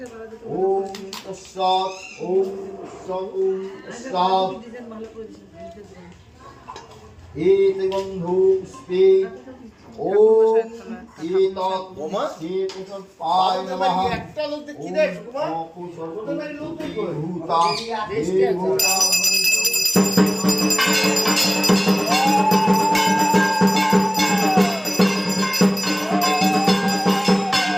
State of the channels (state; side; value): identical; both; correlation 1.00